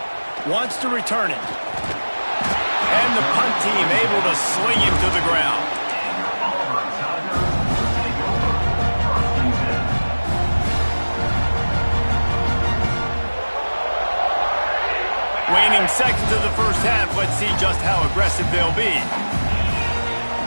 Wants to return it. And the punt team able to sling him to the ground. Waning seconds of the first half. Let's see just how aggressive they'll be.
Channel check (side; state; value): both; inverted; correlation -1.00